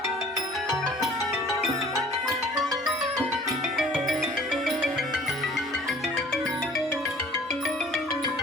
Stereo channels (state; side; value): normal; both; correlation 0.50